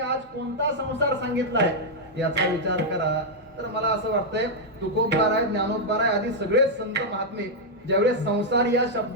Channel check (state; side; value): normal; both; correlation -0.03